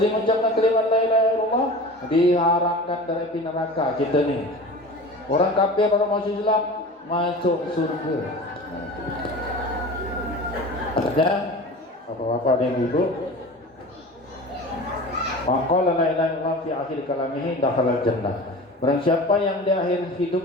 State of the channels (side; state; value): both; normal; correlation 0.35